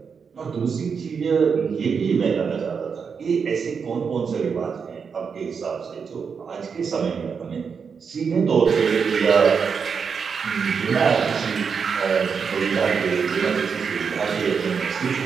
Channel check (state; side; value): quieter; left; 6.0 dB